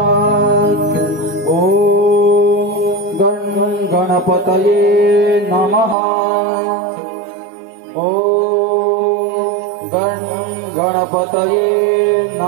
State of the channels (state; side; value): drops out; left; at 6.0 s